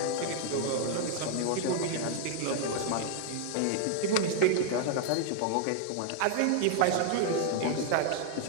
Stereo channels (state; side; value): different; both; correlation 0.00